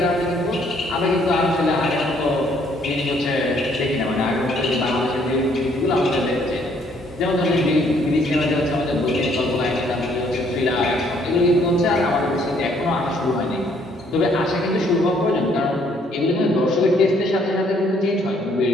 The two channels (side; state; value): both; normal; correlation 0.65